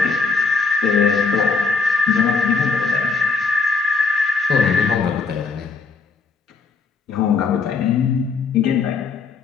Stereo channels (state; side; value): quieter; right; 4.7 dB